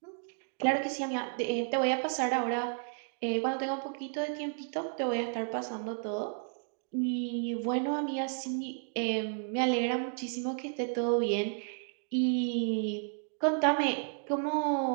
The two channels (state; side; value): silent; left; 56 dB below the other